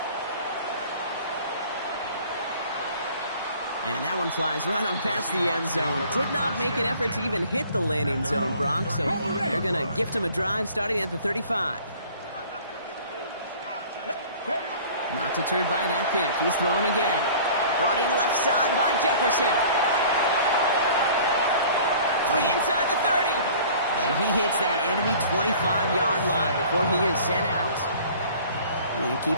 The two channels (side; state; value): both; inverted; correlation -0.48